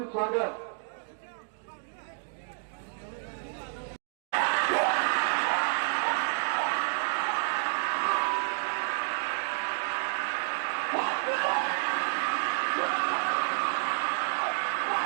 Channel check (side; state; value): left; silent; digital silence